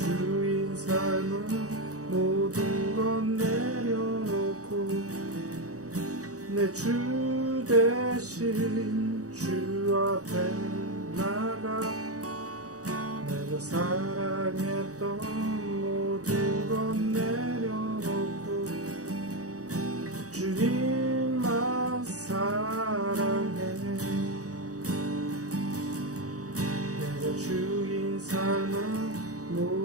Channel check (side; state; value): left; late; 0.66 ms